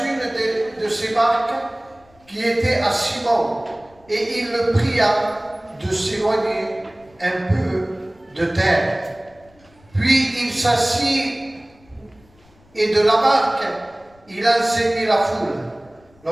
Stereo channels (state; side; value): noise; left; rumble, 30 dB below the sound